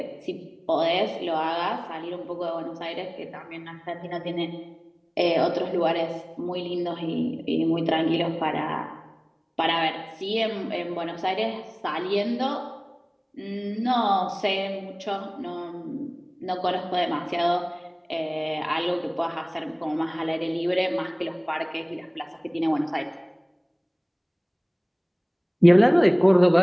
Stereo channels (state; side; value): identical; both; correlation 1.00